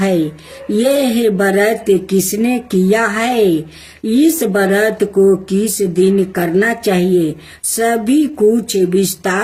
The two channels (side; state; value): both; identical; correlation 1.00